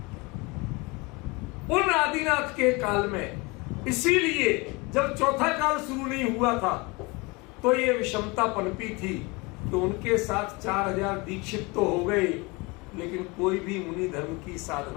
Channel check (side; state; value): right; quieter; 25.8 dB